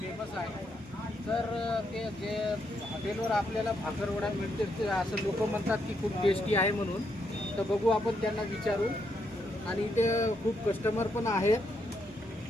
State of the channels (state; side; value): normal; both; correlation 0.78